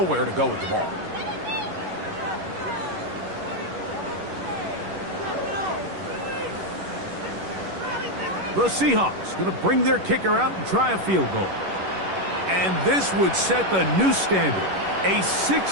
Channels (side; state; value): left; late; 11 ms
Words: to go with the ball. The Seahawks going to bring their kicker out and try a field goal. And this would set the new standard, a